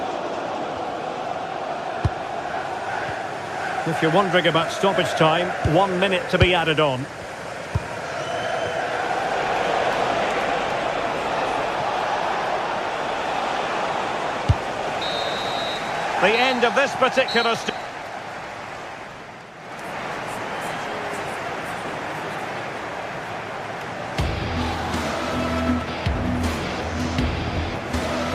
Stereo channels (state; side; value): identical; both; correlation 1.00